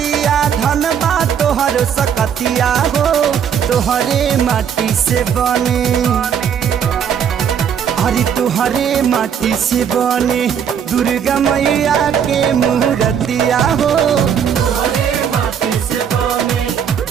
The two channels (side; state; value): left; quieter; 8.1 dB